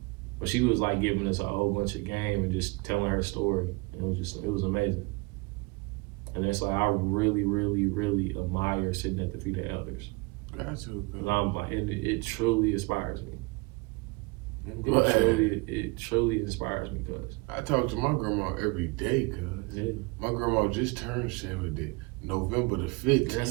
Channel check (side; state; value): left; quieter; 26.9 dB